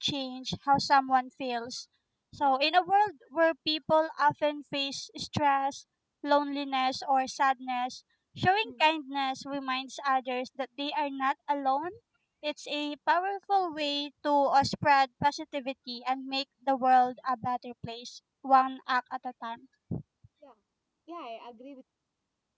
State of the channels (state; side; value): identical; both; correlation 1.00